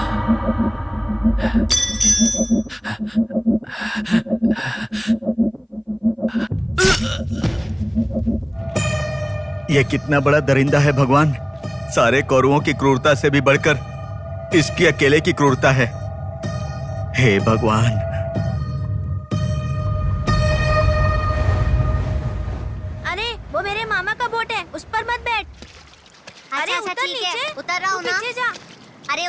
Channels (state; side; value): identical; both; correlation 1.00